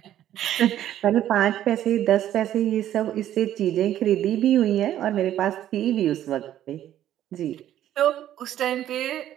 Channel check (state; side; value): quieter; left; 11.9 dB